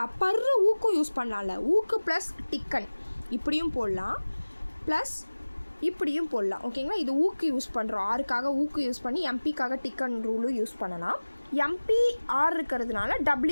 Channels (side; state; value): both; inverted; correlation -1.00